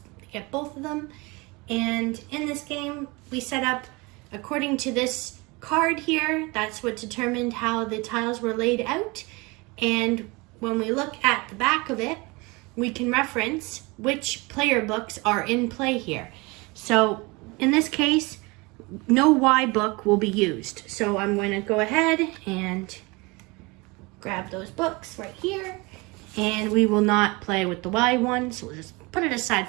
Get both of them. And in this game, we set up according to this card here. That's what determined how the tiles were laid out. And when we look at the back of it, we can reference which player books are in play here. So in this case, no Y book will be used. So I'm going to go ahead and grab those books right here. And we will not play with the Y one, so we'll just put it aside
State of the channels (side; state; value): left; quieter; 25.7 dB